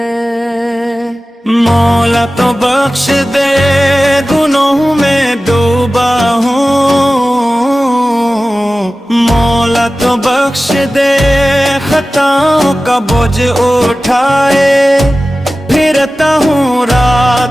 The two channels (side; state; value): both; normal; correlation 0.96